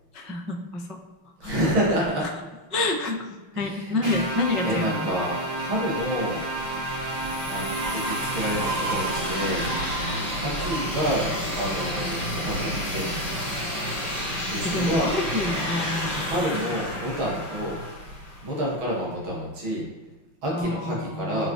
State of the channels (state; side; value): late; left; 5.9 ms